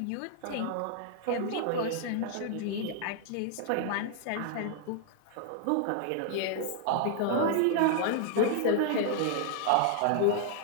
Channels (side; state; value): both; different; correlation 0.00